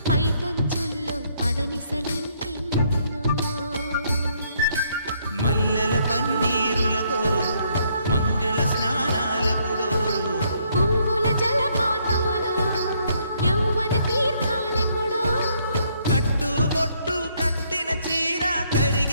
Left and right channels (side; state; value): both; inverted; correlation -0.70